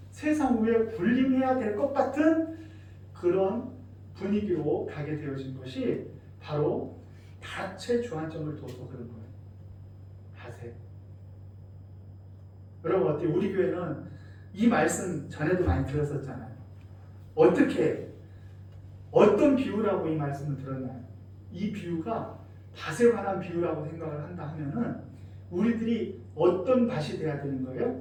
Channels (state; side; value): identical; both; correlation 1.00